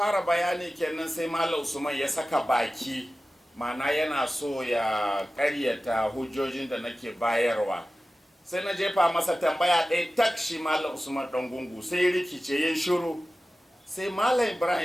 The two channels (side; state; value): both; normal; correlation 0.95